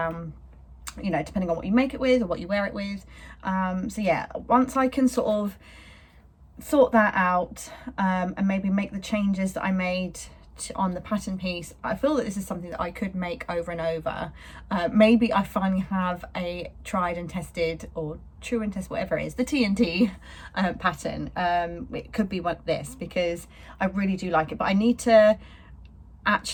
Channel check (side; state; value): both; identical; correlation 1.00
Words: you know, depending on what you make it with or what you wear it with. So yeah, once I can sort of sort that out, and maybe make the changes that I made on the pattern piece, I feel that this is something that I could make over and over. Maybe I finally have a tried and tested, or true and test, whatever it is, the TNT pattern. It could be this, because I really do like it, but I need to